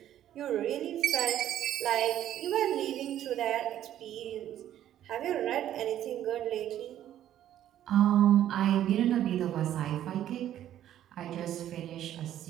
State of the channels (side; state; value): left; quieter; 11.7 dB